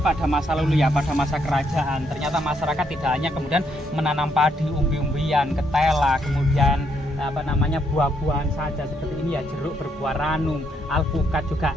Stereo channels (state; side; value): normal; both; correlation 0.74